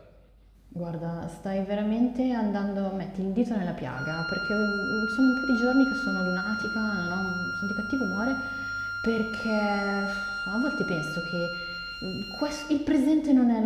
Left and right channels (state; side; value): identical; both; correlation 1.00